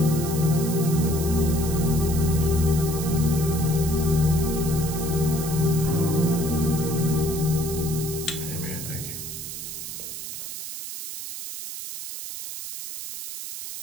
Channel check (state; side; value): noise; right; hiss, 8 dB below the sound